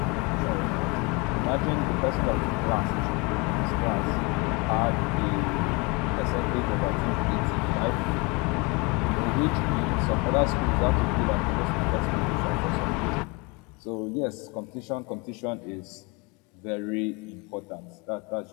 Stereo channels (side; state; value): right; quieter; 28.0 dB